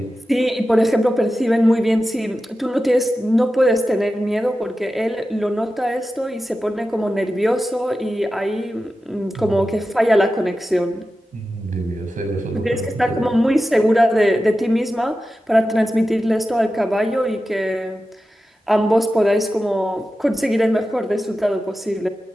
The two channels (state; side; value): normal; both; correlation 0.93